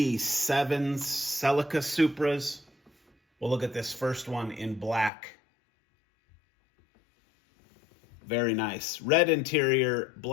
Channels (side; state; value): right; drops out; at 5.1 s